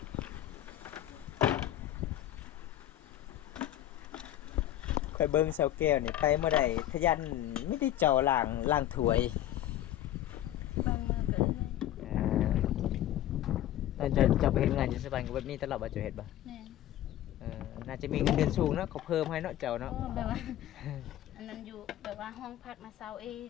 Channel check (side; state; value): right; quieter; 12.7 dB